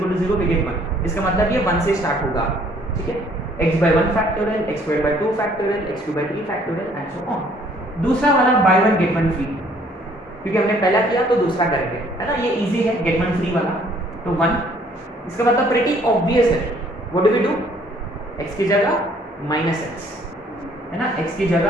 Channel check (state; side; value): normal; both; correlation 0.61